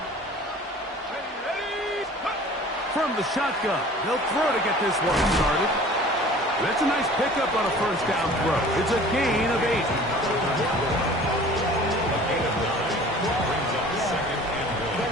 From the shotgun, they'll throw to get this one started. That's a nice pickup on a first down throw. It's a gain of 8.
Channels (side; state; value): both; normal; correlation 0.46